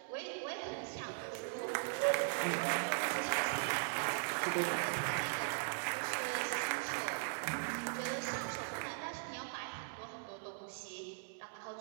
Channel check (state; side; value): silent; left; digital silence